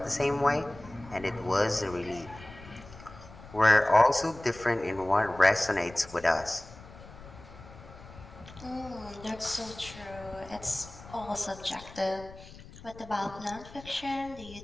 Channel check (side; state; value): left; noise; rumble, 18 dB below the sound